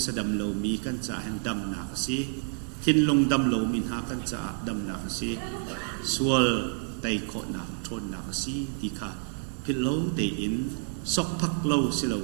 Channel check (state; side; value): silent; left; 59 dB below the other